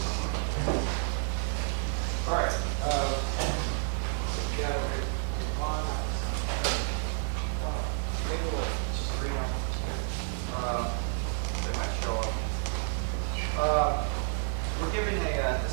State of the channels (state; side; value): silent; left; 57 dB below the other